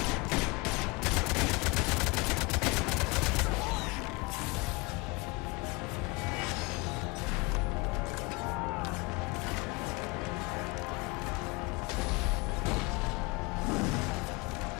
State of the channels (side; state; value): right; quieter; 25.9 dB